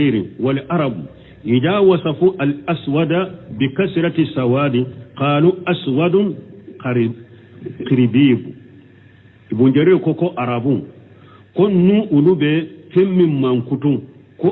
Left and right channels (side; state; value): both; identical; correlation 1.00